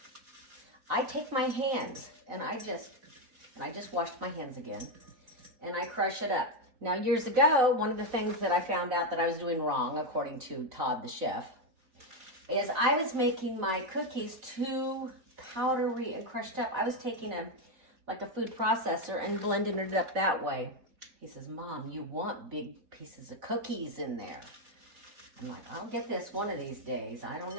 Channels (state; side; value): late; left; 3.9 ms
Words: I take my hands, and I just washed my hands again, and I crush it up. Now years ago, one of the things that I found out that I was doing wrong, according to Todd the chef, is I was making my cookies too powdery and crushed up. I was taking a food processor and blending it up that way. He says, Mom, you want big pieces of cookies in there. I'm like, I'll get this one of these days. I don't